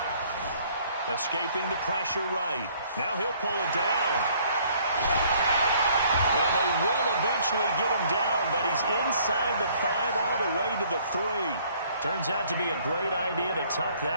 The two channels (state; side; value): inverted; both; correlation -0.60